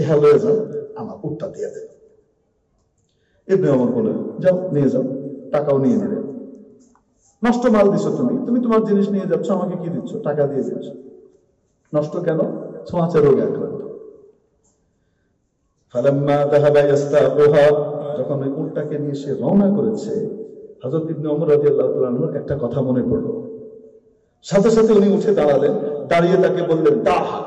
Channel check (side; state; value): both; identical; correlation 1.00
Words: লয়ে যান, আমার উটটা দিয়ে দেন। ইবনে ওমর বলে, যাও নিয়ে যাও, টাকাও নিয়ে নিলেন। নষ্ট মাল দিছো তুমি, তুমি তোমার জিনিস নিয়ে যাচ্ছ, আমাকে কি দিচ্ছ? টাকা দিয়ে দিচ্ছ। নষ্ট কেন? ছোঁয়াচে রোগে আক্রান্ত। ফালাম্মা যাহাবা ইস্তাকুহা, যখন ওই উটটাকে নিয়ে সে রওনা করেছে, হযরত ইবনে ওমর রাদিয়াল্লাহু তাআলা আনহুর একটা কথা মনে পড়ল। সাথে সাথে উনি উঠে দাঁড়ালেন, দাঁড়িয়ে তাকে বললেন, দাহ,